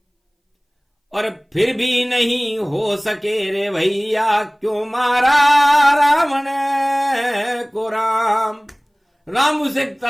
और फिर भी नहीं हो सके रे भैया क्यों मारा रावण को राम। राम उसे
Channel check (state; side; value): identical; both; correlation 1.00